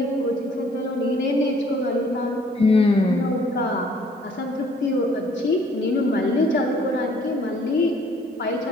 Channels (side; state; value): both; normal; correlation 0.59